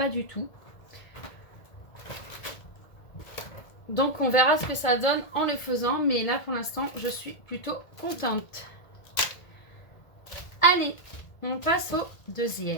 du tout. Donc on verra ce que ça donne en le faisant, mais là pour l'instant je suis plutôt contente. Allez, on passe au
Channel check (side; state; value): right; late; 1.7 ms